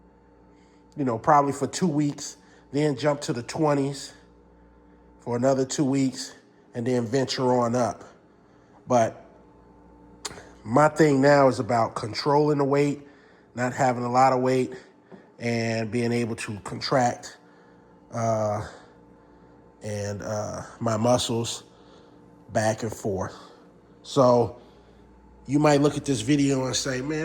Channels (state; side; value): identical; both; correlation 1.00